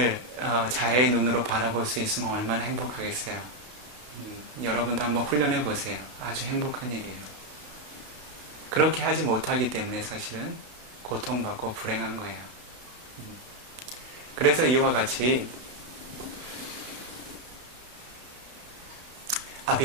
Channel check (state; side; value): late; left; 32 ms